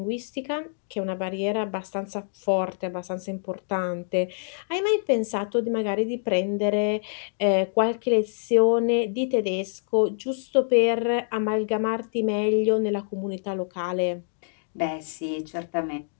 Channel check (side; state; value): right; silent; digital silence